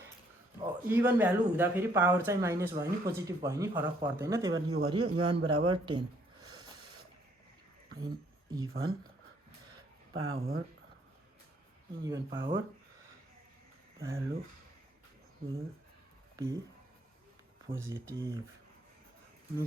इभन भ्यालु हुँदाखेरि पावर चाहिँ माइनस भयो नि पोजिटिभ भयो नि फरक पर्दैन त्यही भएर यो गरियो n बराबर 10 even power value will be positive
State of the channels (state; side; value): normal; both; correlation 0.66